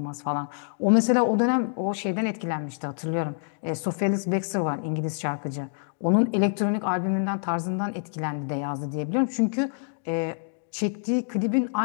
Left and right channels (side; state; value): right; silent; digital silence